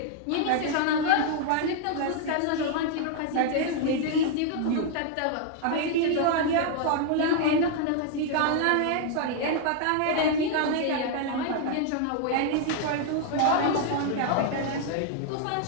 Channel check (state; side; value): different; both; correlation 0.00